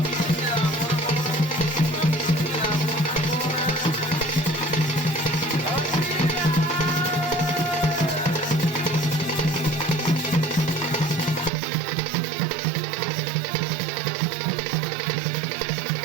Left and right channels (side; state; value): left; drops out; at 11.5 s